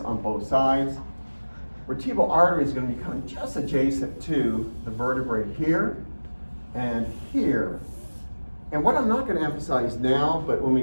on both sides. Vertebral artery is going to be kind of just adjacent to the vertebrae here and here. And what I'm not going to emphasize now, but when we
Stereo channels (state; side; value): inverted; both; correlation -1.00